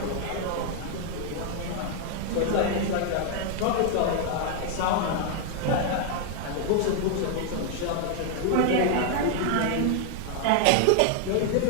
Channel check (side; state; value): both; different; correlation 0.00